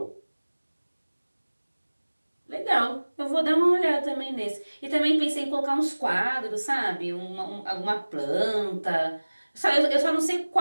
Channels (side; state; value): both; inverted; correlation -1.00